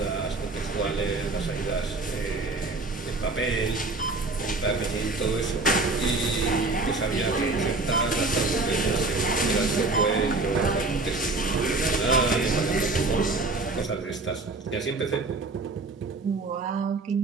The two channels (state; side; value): quieter; left; 3.3 dB